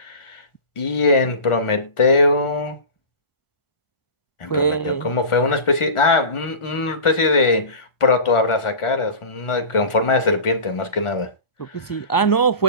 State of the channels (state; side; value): late; right; 1.4 ms